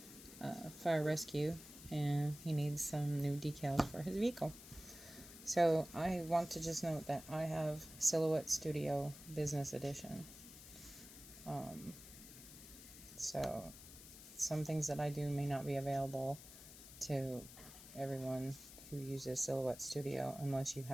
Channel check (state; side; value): noise; left; hiss, 15 dB below the sound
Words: a fire rescue and he needs some new decals for his vehicle. So I want to just note that I have Silhouette Studio Business Edition. So some things that I do may not be available to everyone who uses Silhouette Studio unless you